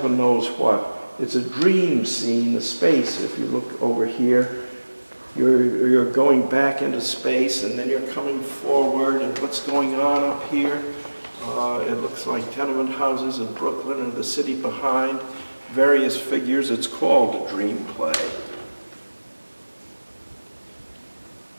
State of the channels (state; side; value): inverted; both; correlation -1.00